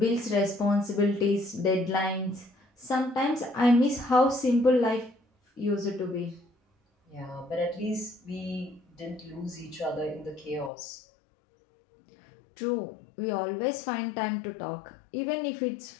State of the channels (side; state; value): right; drops out; at 10.7 s